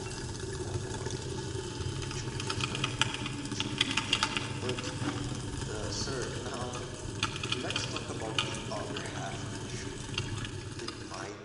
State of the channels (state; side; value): identical; both; correlation 1.00